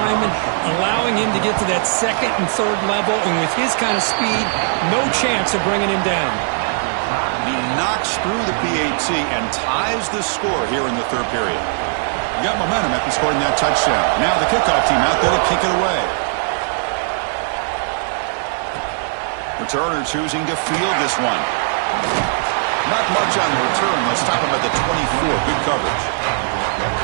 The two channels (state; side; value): silent; left; digital silence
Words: allowing him to get to that 2nd and 3rd level. And with his kind of speed, no chance of bringing him down. He knocks through the PAT and ties the score here in the 3rd period. He got momentum after scoring that touchdown. Now the kickoff team out there to kick it away. Returner choosing to field this one. Not much on the return. They'll stop him at the 24. Good coverage.